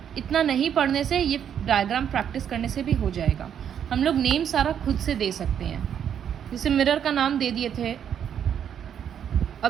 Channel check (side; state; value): left; quieter; 8.8 dB